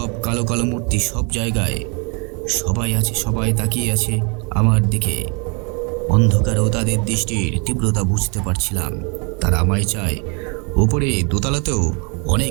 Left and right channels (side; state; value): left; quieter; 34.4 dB